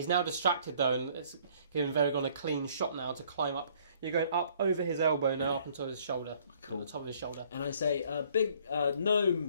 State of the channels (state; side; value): inverted; both; correlation -0.60